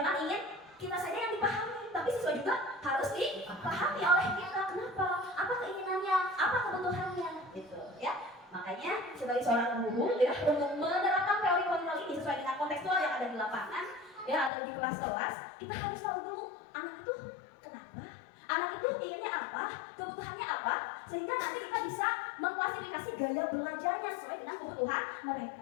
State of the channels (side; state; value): right; drops out; at 14.5 s